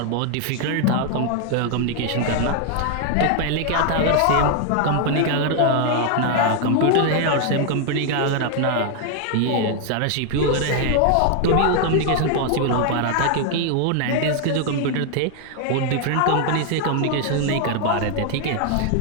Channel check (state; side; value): different; both; correlation 0.00